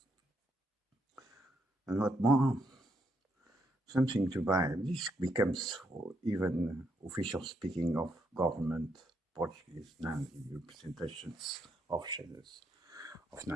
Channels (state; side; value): normal; both; correlation 0.77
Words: And what more? Something to buy. This becomes even official speaking of government Portuguese Nazi representations of shadows of